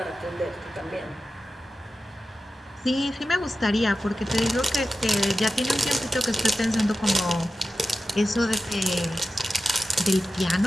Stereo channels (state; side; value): normal; both; correlation 0.93